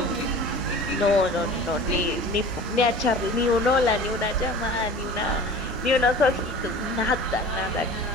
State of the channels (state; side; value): normal; both; correlation 0.40